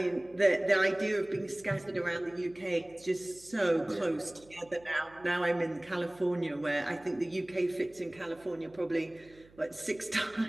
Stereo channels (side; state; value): right; noise; hum, 26 dB below the sound